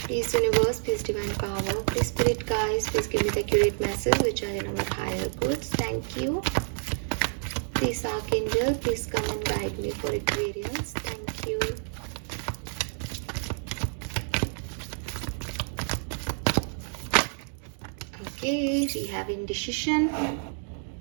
universe, please divine power, please spirit guides, please give me the accurate message which are in our higher goods. Thank you. Please archangel, please come and guide me for Aquarius. Thank you. Okay, we have indecision.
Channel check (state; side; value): silent; left; 59 dB below the other